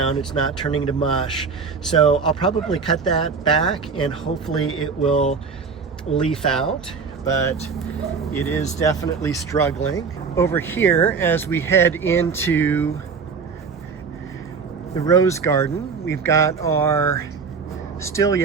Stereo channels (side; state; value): left; quieter; 5.3 dB